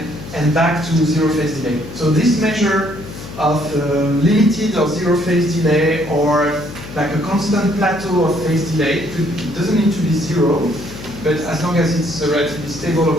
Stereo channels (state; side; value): noise; left; hum, 13 dB below the sound